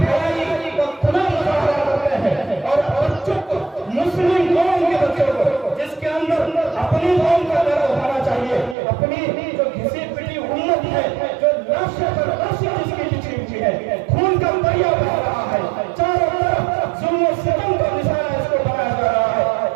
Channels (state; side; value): drops out; left; at 8.8 s